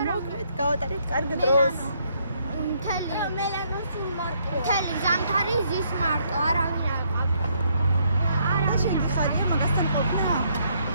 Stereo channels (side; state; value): both; inverted; correlation -0.71